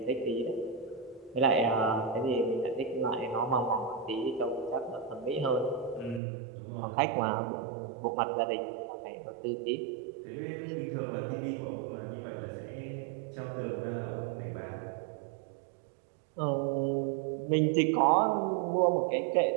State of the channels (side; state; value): left; drops out; at 6.2 s